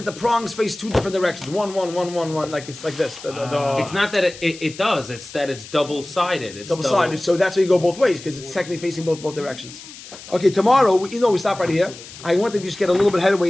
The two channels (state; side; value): noise; left; hiss, 16 dB below the sound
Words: the prongs face two different directions. One, like it's like this. It's not that it does. It's that it's double-sided. It's double-sided. So that's why you go both ways because it's technically facing both directions. Okay, tomorrow we stop right here. I want to just get a little bit headway